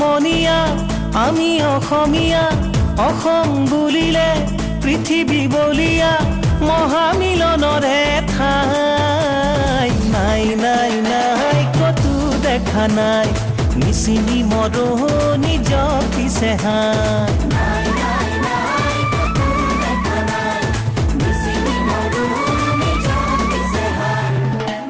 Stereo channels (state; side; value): identical; both; correlation 1.00